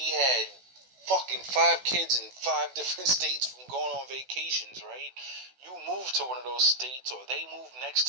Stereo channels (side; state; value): left; late; 16 ms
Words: had fucking 5 kids in 5 different states from going on vacations, right? You move to one of those states, or they move next